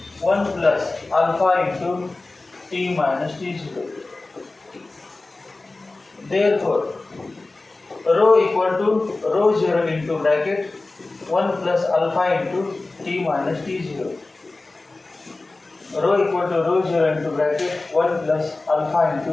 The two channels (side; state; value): right; quieter; 3.2 dB